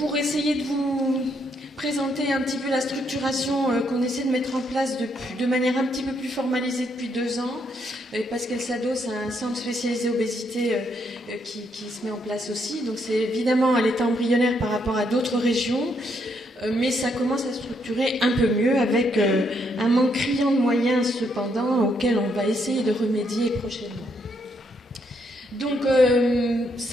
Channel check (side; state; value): both; normal; correlation 0.75